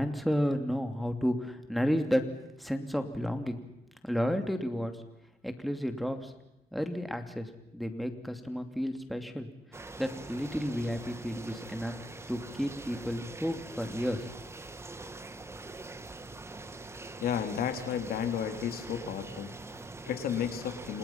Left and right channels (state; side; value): normal; both; correlation 0.83